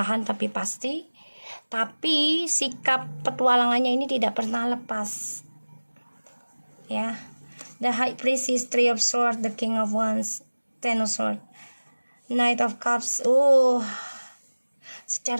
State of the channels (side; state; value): both; inverted; correlation -1.00